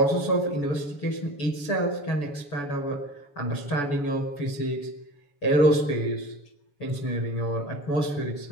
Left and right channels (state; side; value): late; right; 7.0 ms